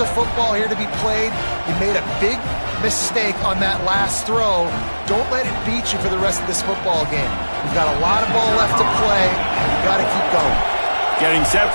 football here to be played. You made a big mistake on that last throw. Don't let it beat you for the rest of this football game. We've got a lot of ball left to play, and you've got to keep going. Getting set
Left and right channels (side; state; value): both; inverted; correlation -1.00